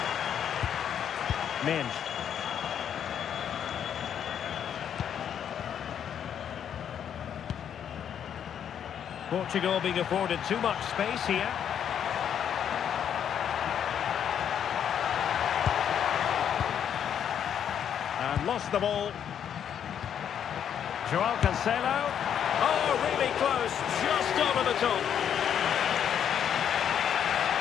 Minge. Portugal being afforded too much space here. And lost the ball. Joao Cancelo. Oh, really close, just over the top.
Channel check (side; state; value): right; quieter; 8.9 dB